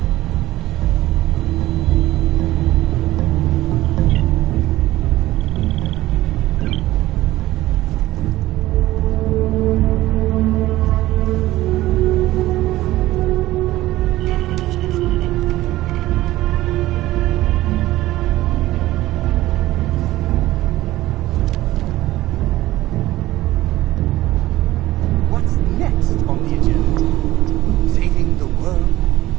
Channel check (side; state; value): left; quieter; 16.3 dB